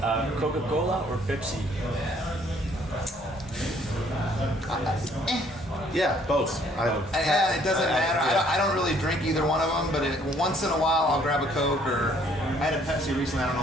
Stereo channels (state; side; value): normal; both; correlation 0.62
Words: Coca-Cola or Pepsi? Yeah, both. It doesn't matter. I don't really drink either one of them, but once in a while I'll grab a Coke, or I had a Pepsi recently. I don't